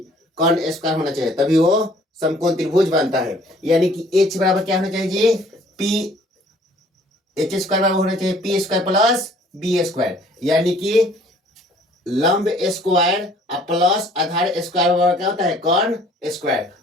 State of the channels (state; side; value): normal; both; correlation 0.56